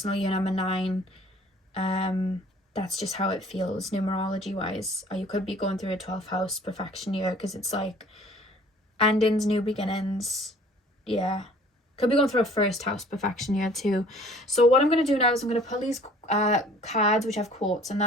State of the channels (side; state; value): both; normal; correlation 0.53